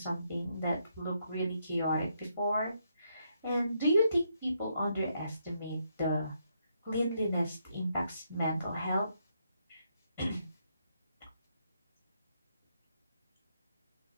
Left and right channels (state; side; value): inverted; both; correlation -0.76